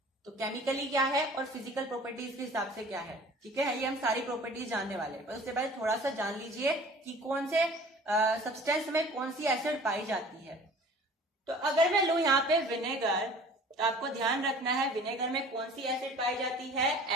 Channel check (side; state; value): both; normal; correlation 0.46